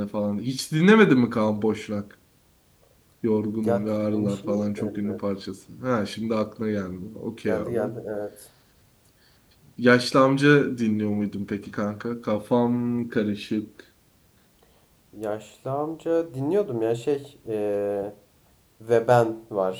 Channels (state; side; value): identical; both; correlation 1.00